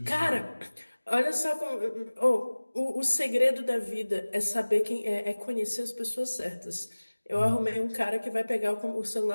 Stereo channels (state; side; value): inverted; both; correlation -1.00